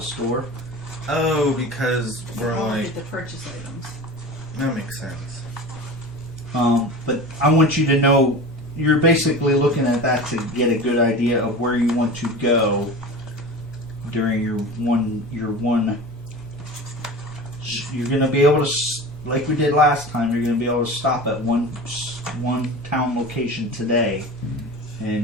store. Oh, because we're I'll like, get the purchase items. that makes sense. But I want you to know you're basically looking at that to get a good idea of where you want to go during your one. You're going to be able to, like we did last time. You're going to be able to stop at one town location today,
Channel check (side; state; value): both; normal; correlation 0.33